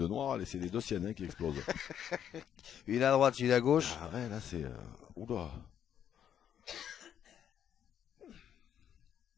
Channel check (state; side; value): quieter; right; 9.4 dB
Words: noirs, c'est les deux siennes qui explosent. Une à droite, une à gauche. Ah ouais, là c'est... Oula.